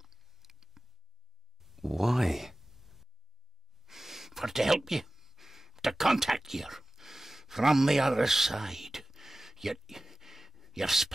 Why? For to help you, to contact you from the other side. You're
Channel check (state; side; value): normal; both; correlation 0.96